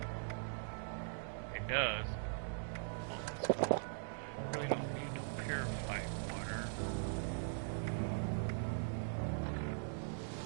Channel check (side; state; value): left; silent; digital silence